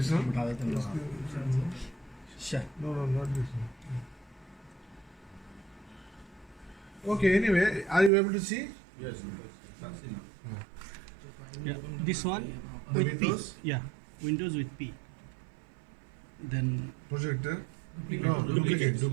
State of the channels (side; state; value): left; drops out; at 8.1 s